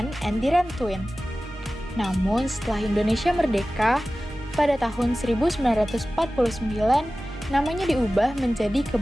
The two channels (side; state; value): both; normal; correlation 0.96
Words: and Diran-Twin. Namun setelah Indonesia merdeka, pada tahun 1949, namanya diubah menjadi